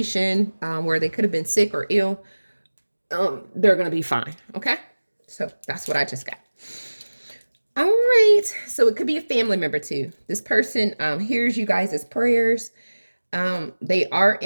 where they could have been sick or ill, they're going to be fine. Okay. So that's what I just got. All right. So it could be a family member too. This person hears you guys' prayers. They are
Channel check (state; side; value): inverted; both; correlation -1.00